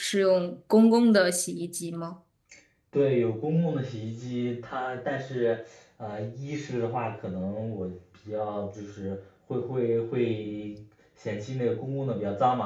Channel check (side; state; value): both; identical; correlation 1.00